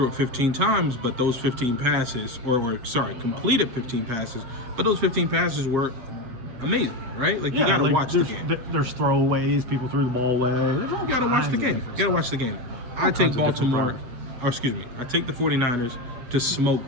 it 15 times, but those 15 passes, completed 15 passes, but those 15 passes were amazing, right? Like, you got to watch the game. There's throwaways, people threw the ball away. You got to watch the game. You got to watch the game. I take Baltimore, I take the 49ers to smoke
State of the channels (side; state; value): left; late; 8.2 ms